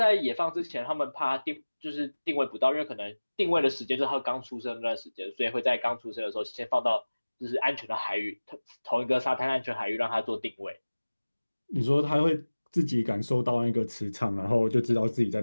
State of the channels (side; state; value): both; inverted; correlation -1.00